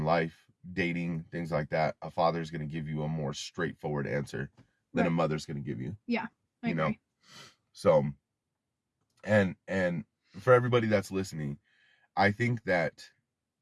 life, dating, things like that. A father's going to give you a more straightforward answer than a Right. mother's going to give you. Yeah. I You know, agree. so and for everybody that's listening, I think that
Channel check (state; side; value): identical; both; correlation 1.00